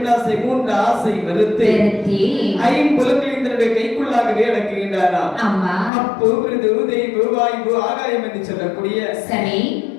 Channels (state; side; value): drops out; right; at 5.9 s